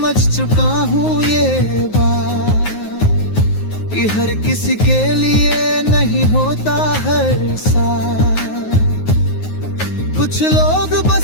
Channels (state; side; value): late; right; 9.5 ms